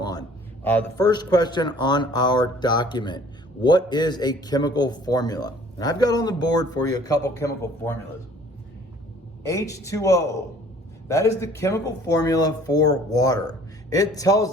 on. The first question on our document, what is a chemical formula? And I've got on the board for you a couple chemical formulas. H2O, that is the chemical formula for water. It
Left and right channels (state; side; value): normal; both; correlation 0.54